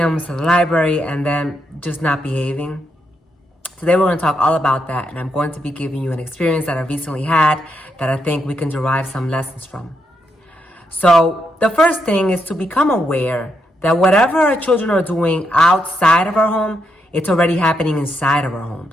to the library, and then just not behaving? Today we're going to talk all about that, and I'm going to be giving you an experience that I recently had that I think we can derive some lessons from. So the first thing is to become aware that whatever our children are doing outside of our home, it's already happening inside of our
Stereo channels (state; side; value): normal; both; correlation 0.80